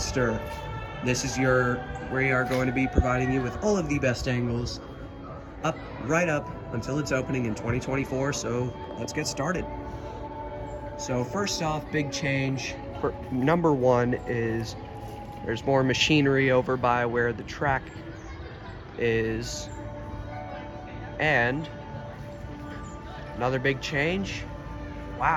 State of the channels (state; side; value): identical; both; correlation 1.00